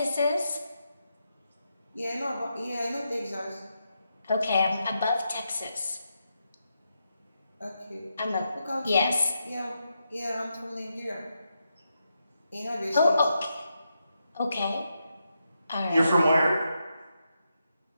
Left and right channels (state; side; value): inverted; both; correlation -0.84